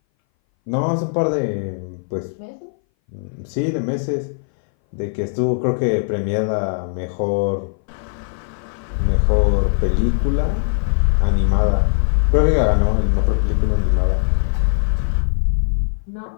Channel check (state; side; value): silent; right; 60 dB below the other